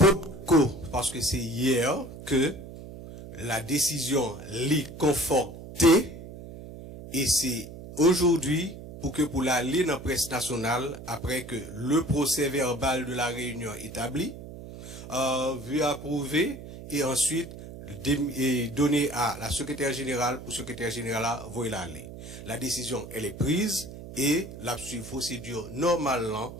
parce que c'est hier que la décision l'est confortée et c'est aujourd'hui pour l'aller dans la presse nationale après que le procès verbal de la réunion établi, vu approuver et ensuite donné à la secrétaire générale pour secrétaire générale voyer l'aller. La décision elle est prise et la procédure normalement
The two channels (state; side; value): noise; right; hum, 13 dB below the sound